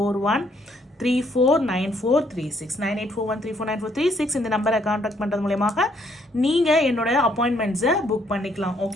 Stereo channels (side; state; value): both; normal; correlation 0.69